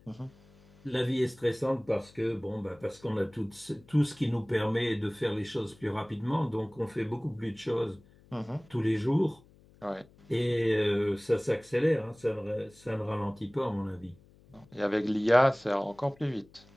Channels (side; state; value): left; noise; hum, 27 dB below the sound